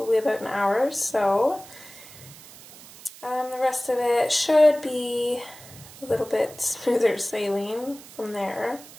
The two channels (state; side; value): noise; right; hiss, 19 dB below the sound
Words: about an hour or so. The rest of it should be a little bit smoother sailing from there.